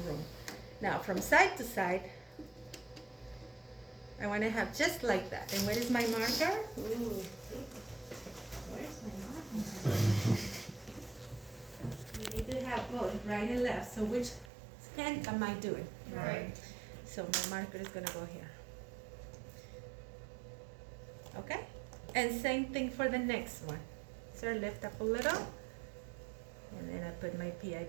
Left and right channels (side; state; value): left; drops out; at 14.5 s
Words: room. Now from side to side, I want to have just like that. And where is my marker? Ooh. Where's my marker? You need to have both right and left. So which hand am I doing? Right. So my marker is going to go here. Okay? And same thing for the next one. So lift up a little. And then I put my